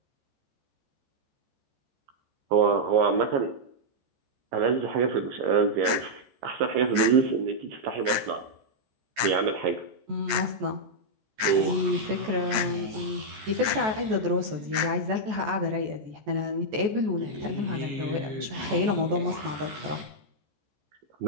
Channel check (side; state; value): left; late; 13 ms